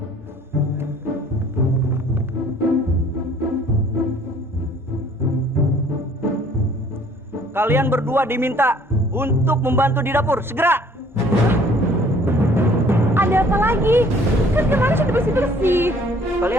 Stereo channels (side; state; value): both; normal; correlation 0.56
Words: Kalian berdua diminta untuk membantu di dapur. Segera. Ada apa lagi? Kan kemarin sudah bersih-bersih.